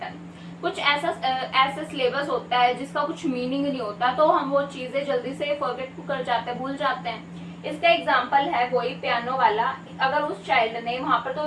कुछ ऐसा सिलेबस होता है जिसका कुछ मीनिंग नहीं होता, तो हम वो चीजें जल्दी से फॉरगेट कर जाते हैं, भूल जाते हैं। इसका एग्जांपल है वही पियानो वाला। अगर उस चाइल्ड ने वहां पर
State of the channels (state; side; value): identical; both; correlation 1.00